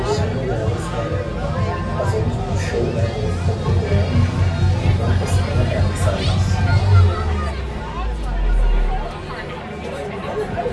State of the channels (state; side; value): identical; both; correlation 1.00